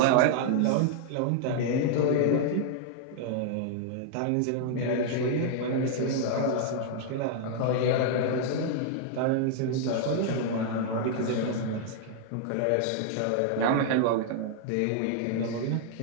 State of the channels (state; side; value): different; both; correlation -0.01